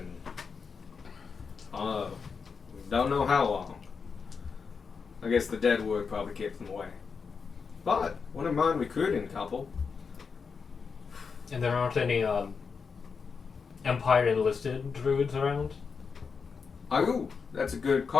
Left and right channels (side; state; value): right; quieter; 5.5 dB